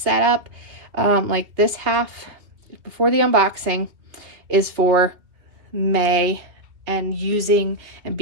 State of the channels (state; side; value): late; left; 2.6 ms